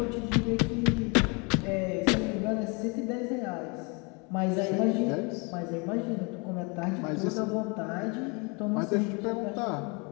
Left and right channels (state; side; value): quieter; right; 31.3 dB